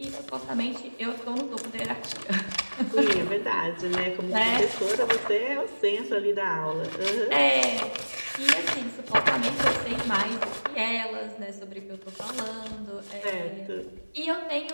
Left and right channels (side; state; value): both; inverted; correlation -1.00